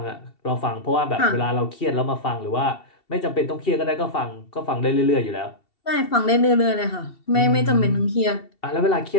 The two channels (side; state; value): right; late; 2.7 ms